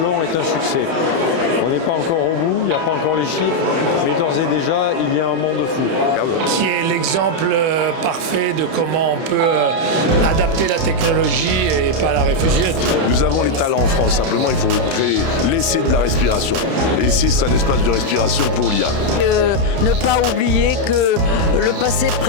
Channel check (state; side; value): late; left; 31 ms